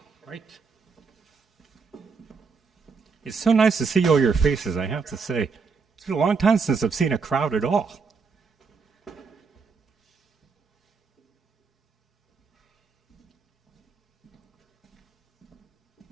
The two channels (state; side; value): quieter; left; 5.1 dB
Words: Right. It's so nice to see all your faces, I have to say. It's been a long time since I've seen a crowd at all.